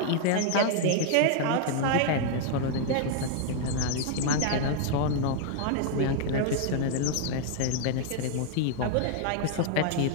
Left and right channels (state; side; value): different; both; correlation 0.00